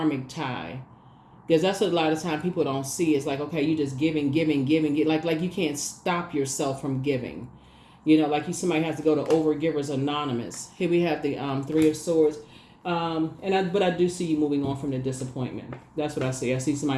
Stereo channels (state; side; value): identical; both; correlation 1.00